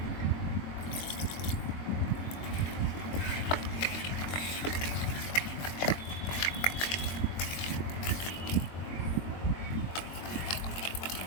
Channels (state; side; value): late; right; 22 ms